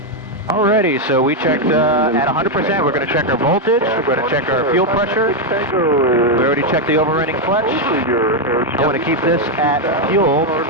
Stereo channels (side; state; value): both; normal; correlation 0.02